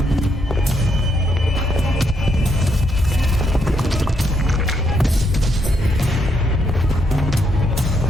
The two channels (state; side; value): normal; both; correlation 0.76